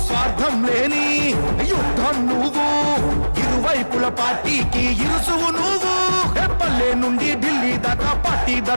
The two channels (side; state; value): both; inverted; correlation -1.00